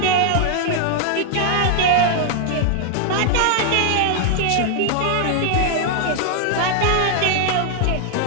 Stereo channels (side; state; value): both; different; correlation 0.00